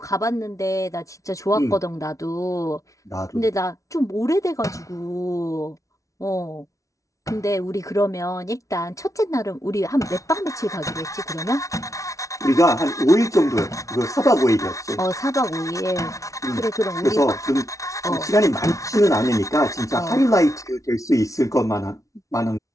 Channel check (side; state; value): right; late; 0.16 ms